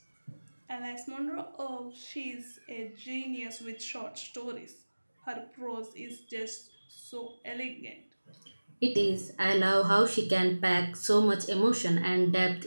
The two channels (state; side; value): inverted; both; correlation -1.00